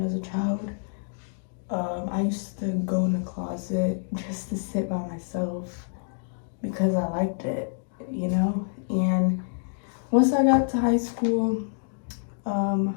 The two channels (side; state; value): right; silent; digital silence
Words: as a child. I used to go in the closet just to sit by myself because I liked it, And once I got to high school,